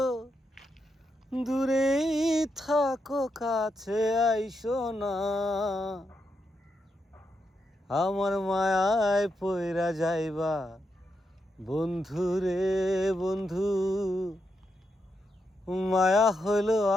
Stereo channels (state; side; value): normal; both; correlation 0.83